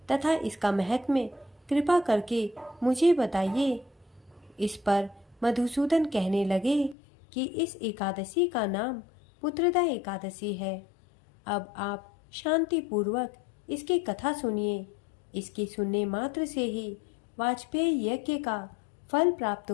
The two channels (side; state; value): right; drops out; at 7.0 s